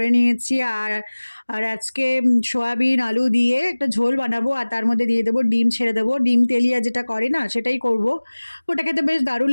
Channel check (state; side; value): inverted; both; correlation -1.00